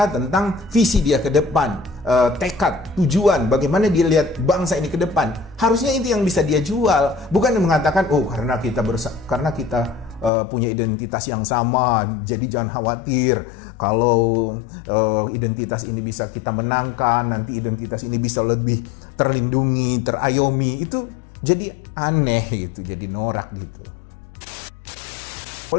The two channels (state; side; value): drops out; right; at 10.3 s